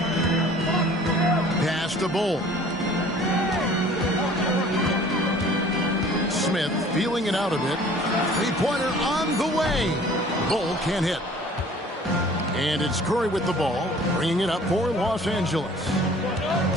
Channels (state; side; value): normal; both; correlation 0.50